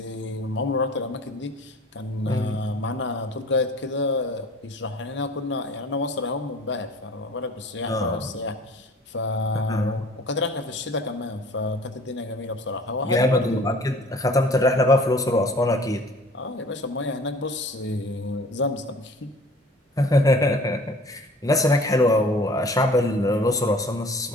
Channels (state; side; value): normal; both; correlation 0.48